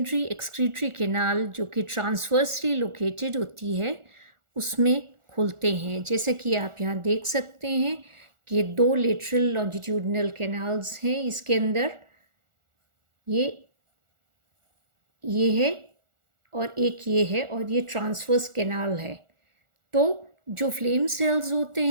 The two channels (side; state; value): left; late; 1.4 ms